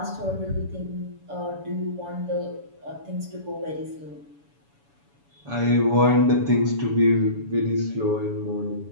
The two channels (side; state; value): left; late; 7.1 ms